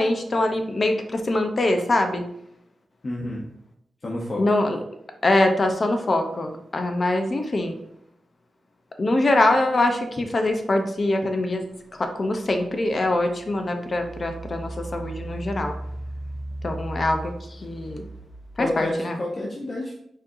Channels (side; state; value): both; normal; correlation 0.92